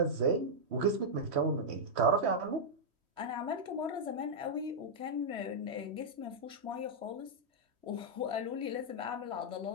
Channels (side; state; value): left; late; 3.1 ms